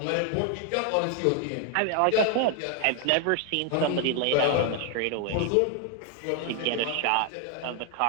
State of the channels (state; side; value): different; both; correlation 0.01